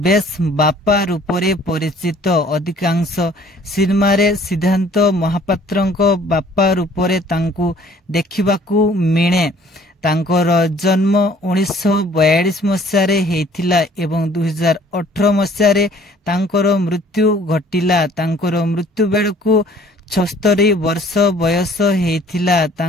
ବେଶ୍ ବାପା ରୂପରେ ପରିଚିତ। ଅଧିକାଂଶ ସିନେମାରେ ସିଦ୍ଧାନ୍ତ ମହାପାତ୍ରଙ୍କ ବାପା ରୂପରେ ତାଙ୍କୁ ଦେଖିବାକୁ ମିଳେ। ତାଙ୍କର ଜନ୍ମ 1942 ମସିହାରେ ହେଇଥିଲା ଏବଂ 2018 ମସିହାରେ ତାଙ୍କର ମୃତ୍ୟୁ ଘଟିଲା। ତାଙ୍କର ମୃତ୍ୟୁ ବେଳକୁ 76 ବର୍ଷ ବୟସ ହେଇଥିଲା।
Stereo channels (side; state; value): both; normal; correlation 0.55